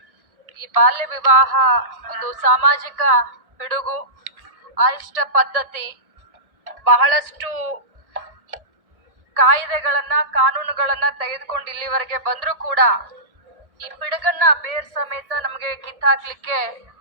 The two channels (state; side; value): late; left; 1.6 ms